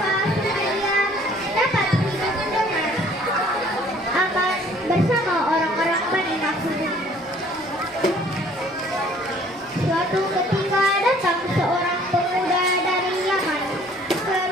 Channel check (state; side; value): normal; both; correlation 0.56